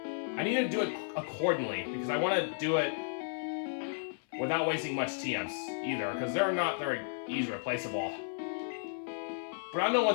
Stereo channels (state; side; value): silent; right; 55 dB below the other